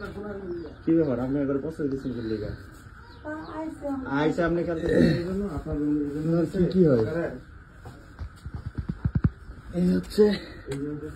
কি ব্যাপার, আপনি একবার পছন্দ দিচ্ছেন লিগা আইসা আপনি কি হয় এই হচ্ছে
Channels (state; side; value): identical; both; correlation 1.00